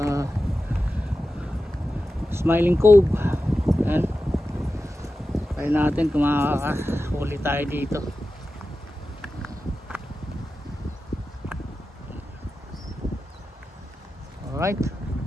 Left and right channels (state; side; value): normal; both; correlation 0.93